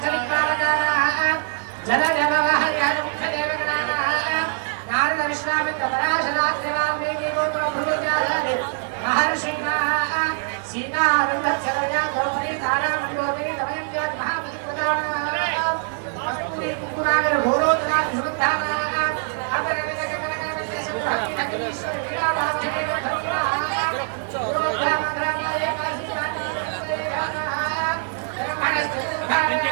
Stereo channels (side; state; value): left; silent; 57 dB below the other